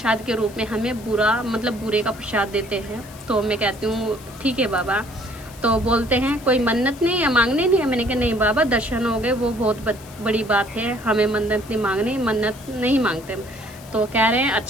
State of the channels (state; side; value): noise; left; hiss, 21 dB below the sound